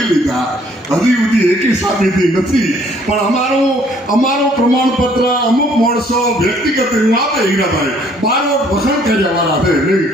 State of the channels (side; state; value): both; normal; correlation 0.61